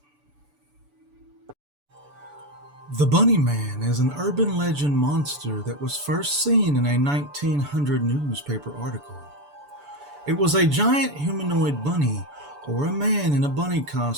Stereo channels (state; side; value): late; left; 6.9 ms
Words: The Bunny Man is an urban legend monster that was first seen in a 1900 newspaper article. It was a giant humanoid bunny or a man in a bunny